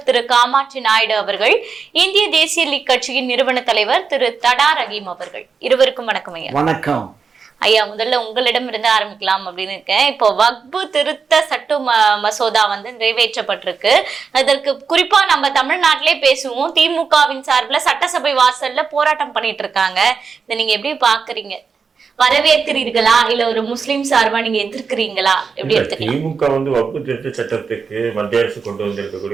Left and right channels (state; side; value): quieter; left; 5.4 dB